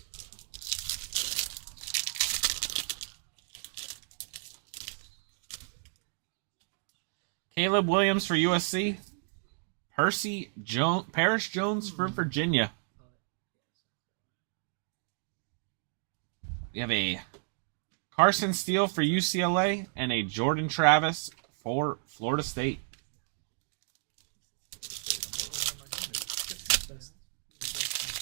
Caleb Williams for USC. Paris Jones for Virginia. We have a Carson Steele for UCLA and a Jordan Travis for Florida State.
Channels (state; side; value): silent; left; digital silence